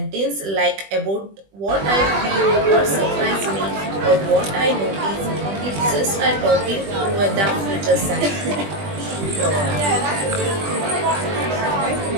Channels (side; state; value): left; late; 20 ms